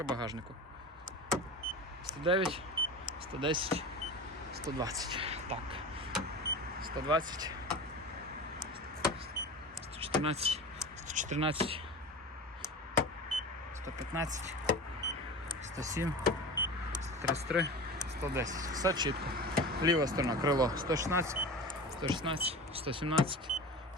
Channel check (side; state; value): both; normal; correlation 0.32